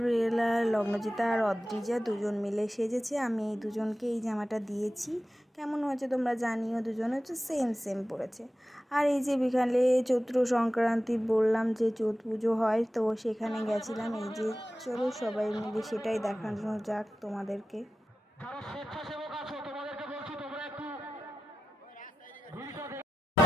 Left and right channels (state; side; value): normal; both; correlation 0.93